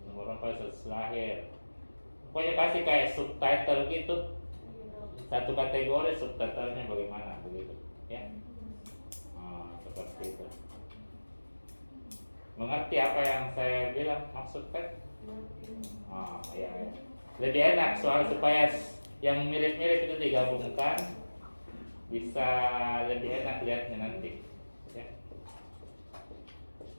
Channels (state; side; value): inverted; both; correlation -1.00